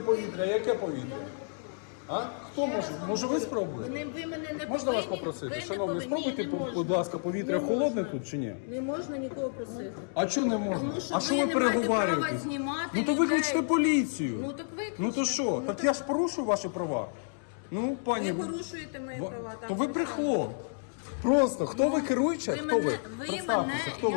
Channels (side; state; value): right; silent; digital silence